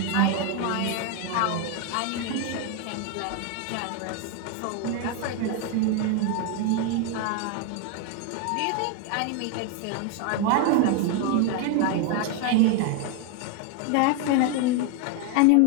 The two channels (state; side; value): different; both; correlation 0.01